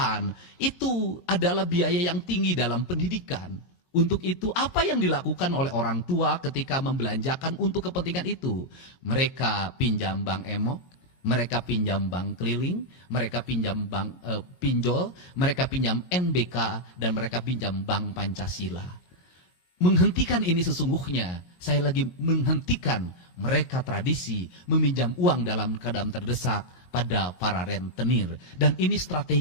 itu adalah biaya yang tinggi dalam pendidikan. Untuk itu, apa yang dilakukan oleh orang tua ketika membelanjakan untuk kepentingan itu? Mereka pinjam bank emok, mereka pinjam bank keliling, mereka pinjam bank pinjol, mereka pinjam NBK, dan mereka pinjam bank Pancasila. Menghentikan ini sesungguhnya, saya lagi menghentikan mereka tradisi meminjam uang dalam keadaan terdesak pada para rentenir. Dan ini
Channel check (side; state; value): right; late; 17 ms